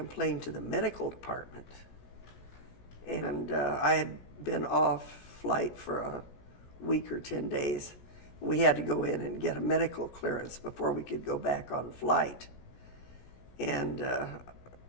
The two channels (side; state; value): right; late; 17 ms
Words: to the medical department. And I had been off flight for a week or 10 days. We had to go in and get a medical clearance before we could go back on flight. And,